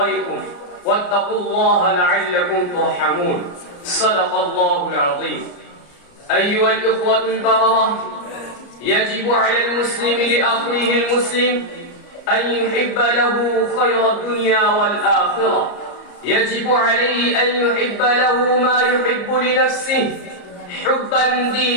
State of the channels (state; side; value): late; right; 34 ms